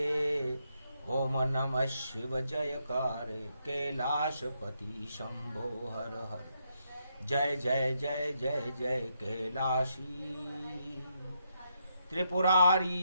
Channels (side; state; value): both; inverted; correlation -0.79